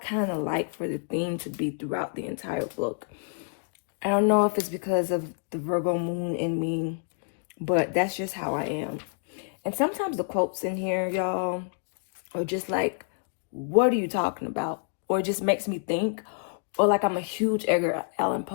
of like for the theme to be throughout the entire book. I don't know if it's because of the Virgo moon in me, but that's just how I am. And sometimes the quotes in here, y'all, are just like, what are you talking about? Or it just makes me think. Or like, I'm a huge Edgar Allan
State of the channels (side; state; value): right; silent; digital silence